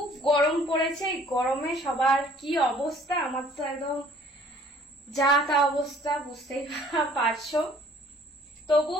গরম পড়েছে, এই গরমে সবার কি অবস্থা, আমার তো একদম যা তা অবস্থা, বুঝতেই পারছো। তবু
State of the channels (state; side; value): normal; both; correlation 0.56